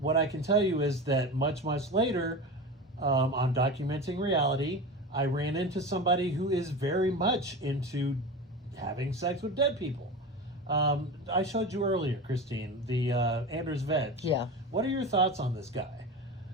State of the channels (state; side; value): normal; both; correlation 0.27